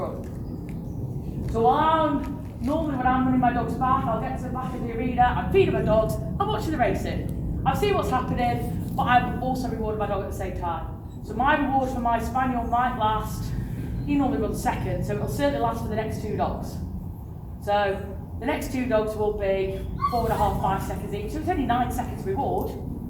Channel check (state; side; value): identical; both; correlation 1.00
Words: So normally when I'm running my dog's back, I'll get to the back of the arena, I'm feeding my dogs, I'm watching the racing. I see what's happening, but I'm also rewarding my dog at the same time. So my reward for my spaniel might last, he normally runs second, so it'll certainly last for the next 2 dogs. So the next 2 dogs will be 4.5, 5 seconds each, so it's only 9 seconds reward.